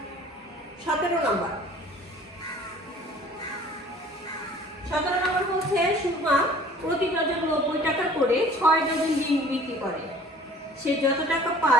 17 নম্বর। 17 নম্বর বলছে সুরমা প্রতি ডজন 90 টাকা করে 6 ডজন ডিম বিক্রি করে। সে যত টাকা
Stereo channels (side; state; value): both; normal; correlation 0.50